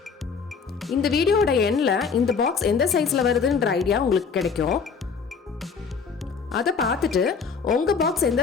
இந்த வீடியோட எண்ணில் இந்த பாக்ஸ் எந்த சைஸில் வருதுன்ற ஐடியா உங்களுக்கு கிடைக்கும். அதை பார்த்துட்டு உங்கள் பாக்ஸ்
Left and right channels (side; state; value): right; quieter; 5.6 dB